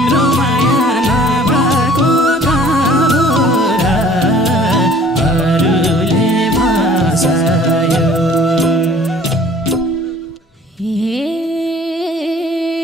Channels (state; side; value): normal; both; correlation 0.52